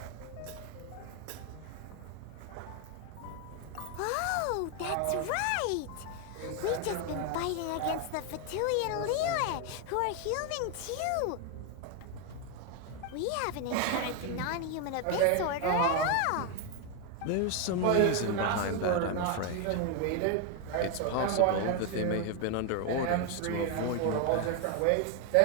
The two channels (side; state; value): both; different; correlation 0.01